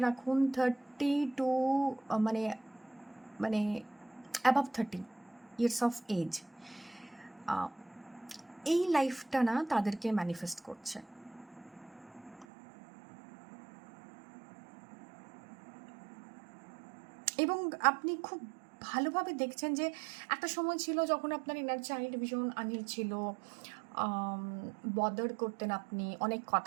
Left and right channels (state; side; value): drops out; left; at 12.5 s